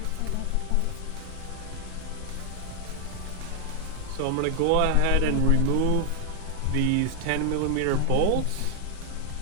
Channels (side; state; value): both; different; correlation 0.00